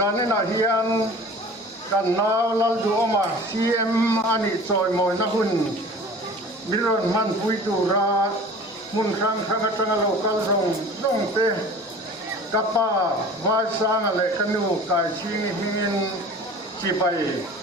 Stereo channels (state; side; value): normal; both; correlation 0.42